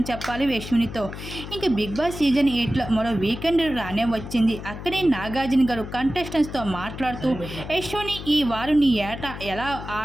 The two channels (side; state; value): left; noise; hum, 10 dB below the sound